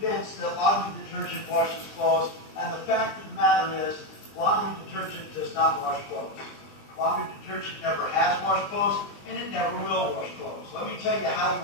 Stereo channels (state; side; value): late; right; 20 ms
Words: that laundry detergent washes clothes, and the fact of the matter is, laundry detergent does not wash clothes. Laundry detergent never has washed clothes, and it never will wash clothes. Let me tell you how you